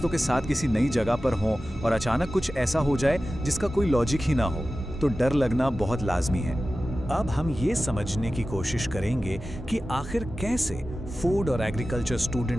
के साथ किसी नई जगह पर हों और अचानक कुछ ऐसा हो जाए जिसका कोई लॉजिक ही ना हो, तो डर लगना बहुत लाजमी है। अब हम ये समझने की कोशिश करेंगे कि आखिर कैसे फूड और एग्रीकल्चर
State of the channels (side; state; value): both; normal; correlation 0.95